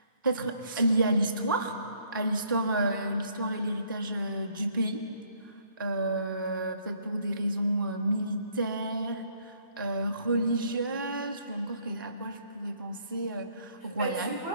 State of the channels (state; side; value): inverted; both; correlation -0.65